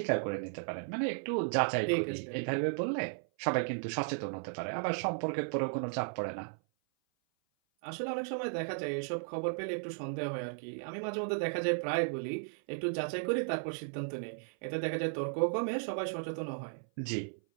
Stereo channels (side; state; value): left; silent; 54 dB below the other